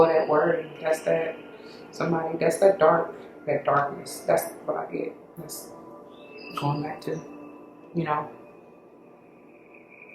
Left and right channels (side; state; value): both; identical; correlation 1.00